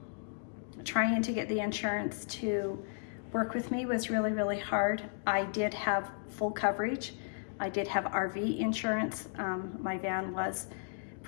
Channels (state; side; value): silent; right; digital silence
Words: to get the insurance to work with me was really, really hard. I did have full coverage. I did have RV insurance. My van was